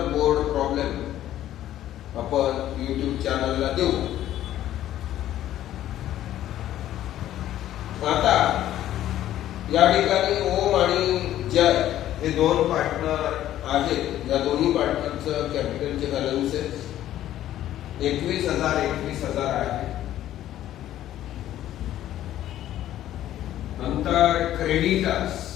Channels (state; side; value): quieter; right; 12.7 dB